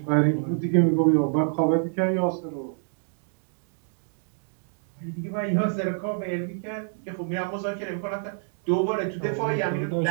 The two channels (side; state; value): left; silent; digital silence